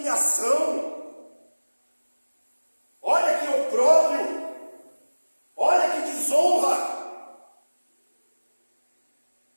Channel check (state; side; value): inverted; both; correlation -1.00